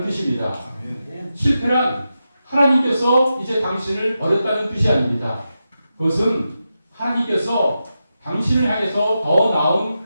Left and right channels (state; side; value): inverted; both; correlation -0.89